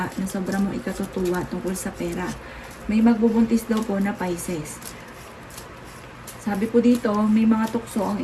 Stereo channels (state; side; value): identical; both; correlation 1.00